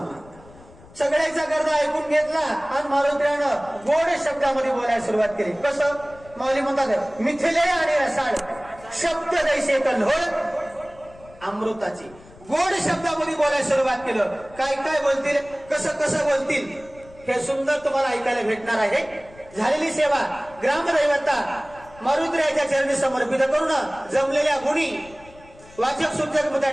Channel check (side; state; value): left; noise; rumble, 23 dB below the sound